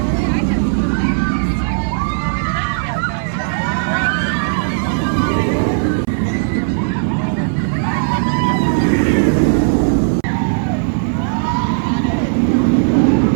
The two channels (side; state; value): left; silent; 61 dB below the other